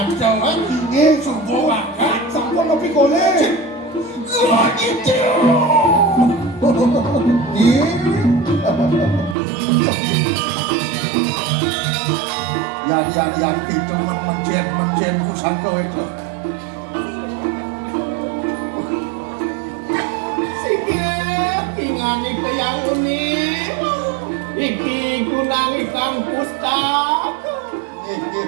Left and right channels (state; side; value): drops out; left; at 9.3 s